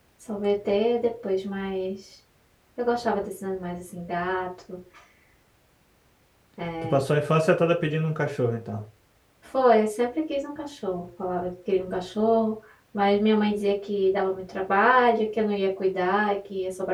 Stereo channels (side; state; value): both; identical; correlation 1.00